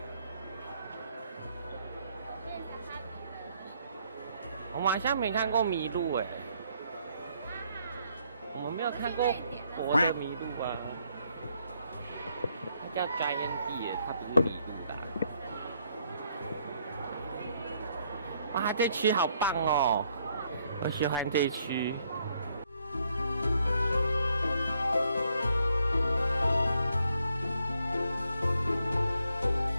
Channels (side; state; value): both; inverted; correlation -0.71